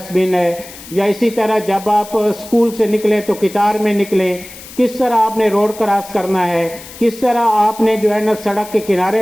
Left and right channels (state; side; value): noise; left; hiss, 16 dB below the sound